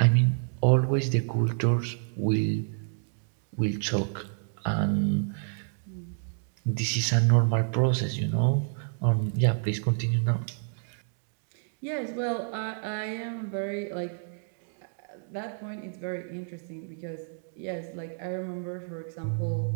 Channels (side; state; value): left; silent; digital silence